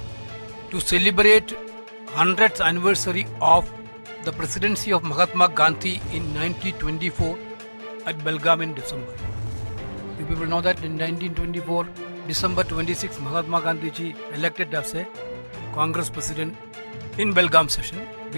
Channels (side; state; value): both; inverted; correlation -1.00